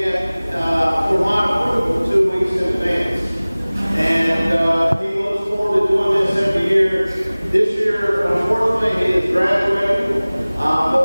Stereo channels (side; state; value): both; inverted; correlation -0.99